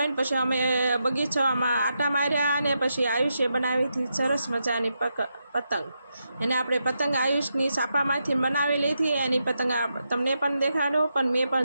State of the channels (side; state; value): both; inverted; correlation -0.84